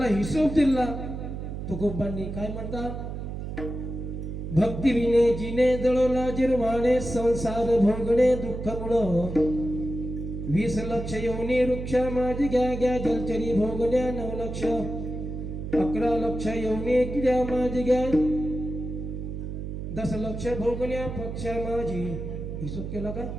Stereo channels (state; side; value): noise; right; hum, 6 dB below the sound